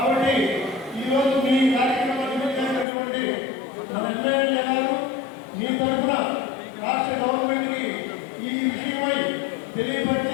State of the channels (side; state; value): right; drops out; at 2.9 s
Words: ఈరోజు మీ కార్యక్రమాన్ని చేసినటువంటి మన ఎమ్మెల్యే గారు మీ తరఫున రాష్ట్ర గవర్నమెంట్కి ఈ విషయమై